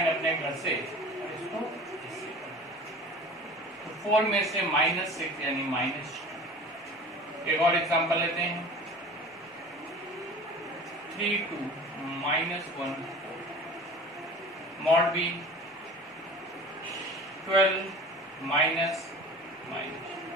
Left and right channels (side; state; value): both; normal; correlation 0.40